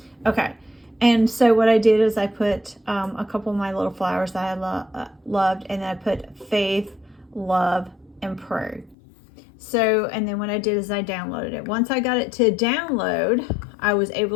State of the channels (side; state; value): right; drops out; at 9.0 s